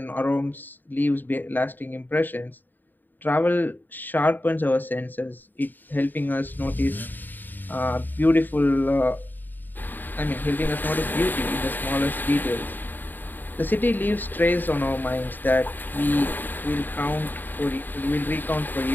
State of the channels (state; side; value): late; right; 0.090 ms